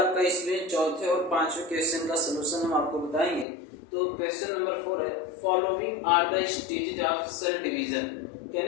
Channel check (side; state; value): right; drops out; at 3.5 s